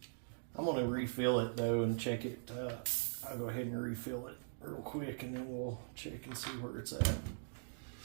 I'm going to refill it, though, and check it. I'll go ahead and refill it real quick, and then we'll check and see where it's at.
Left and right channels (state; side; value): silent; left; digital silence